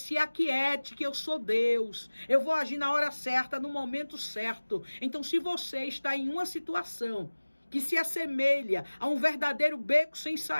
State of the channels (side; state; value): both; inverted; correlation -1.00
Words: aquiete, que eu sou Deus, eu vou agir na hora certa, no momento certo. Então, se você está em uma situação que se assemelha a um verdadeiro beco sem